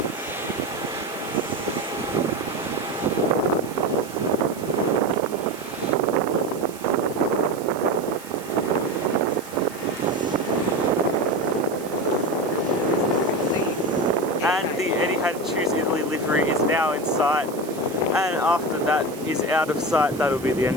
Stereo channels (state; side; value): noise; right; hiss, 18 dB below the sound